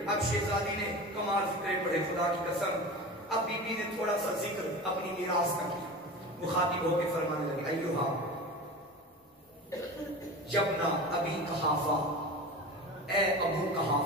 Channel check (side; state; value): both; normal; correlation 0.31